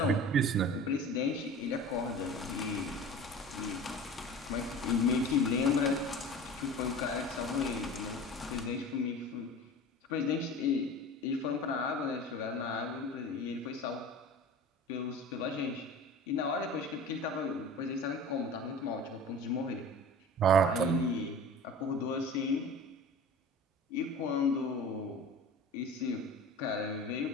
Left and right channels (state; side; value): normal; both; correlation 0.37